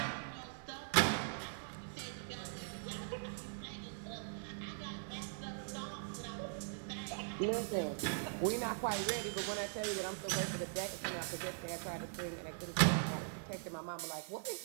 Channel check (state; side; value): silent; left; digital silence